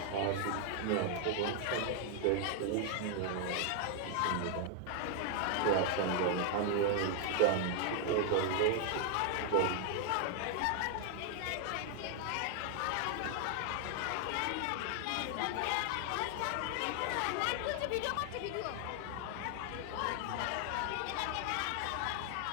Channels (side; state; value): both; different; correlation 0.00